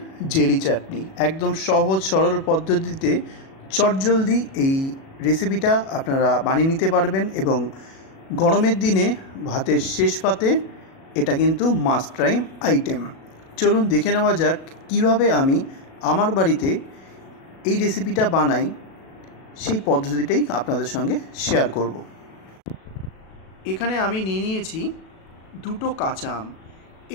জেলি চাটনি, একদম সহজ সরল পদ্ধতিতে চটজলদি এই রেসিপিটা আপনারা বানিয়ে নিতে পারবেন এবং গরমের দিনে ভাতের শেষ পাতে এটা কিন্তু মাস্ট ট্রাই আইটেম। চলুন দেখে নেওয়া যাক কীভাবে আমি আমার বাড়িতে এই রেসিপিটা বানাই, সেই পদ্ধতিটাই আপনাদের সঙ্গে শেয়ার করব। এখানে আমি নিয়ে নিয়েছি দুটো কাঁচা আম।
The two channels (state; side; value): late; right; 37 ms